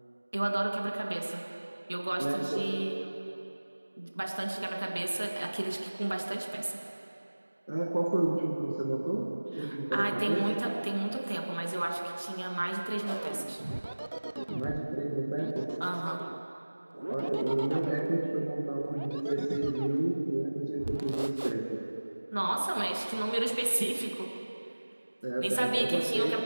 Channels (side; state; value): both; inverted; correlation -1.00